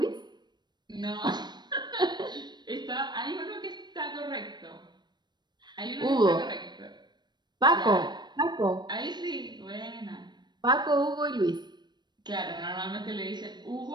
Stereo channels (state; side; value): late; left; 0.21 ms